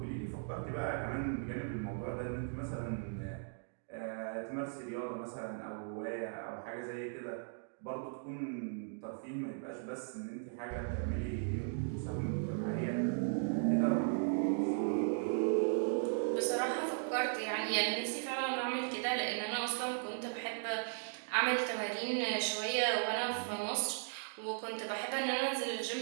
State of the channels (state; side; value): silent; left; digital silence